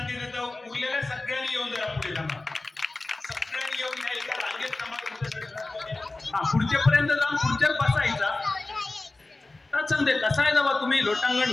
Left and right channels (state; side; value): quieter; right; 3.1 dB